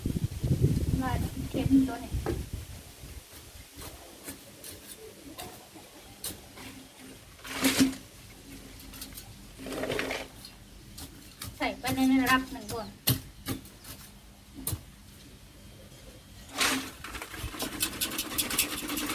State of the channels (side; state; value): both; identical; correlation 1.00